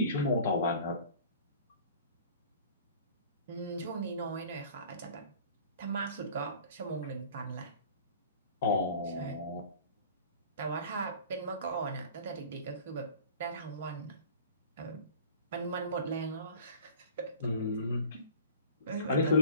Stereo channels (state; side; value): inverted; both; correlation -0.44